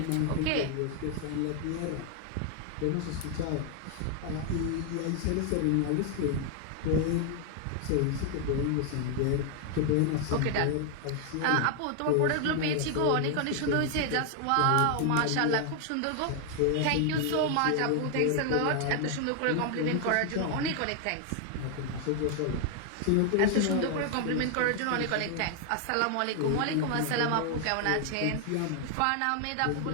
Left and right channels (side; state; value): both; different; correlation 0.00